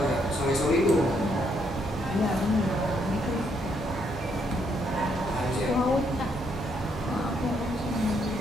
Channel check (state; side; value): normal; both; correlation 0.73